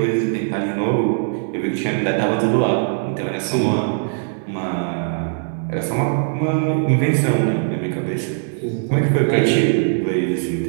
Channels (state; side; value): silent; left; digital silence